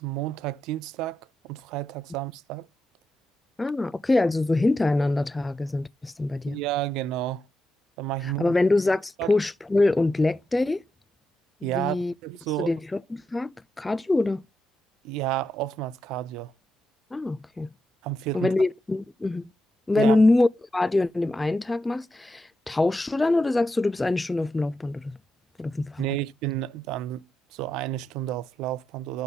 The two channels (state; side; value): normal; both; correlation 0.86